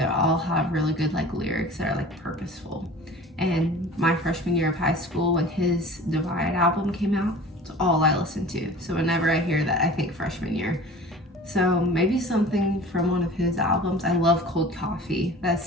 all have really good like lyrics that are like purposeful. And my freshman year of high school, when his Divide album came out, it's all I listened to. So whenever I hear that, I think freshman year. So maybe something from one of his albums. I love Cold Coffee.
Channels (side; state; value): both; normal; correlation 0.41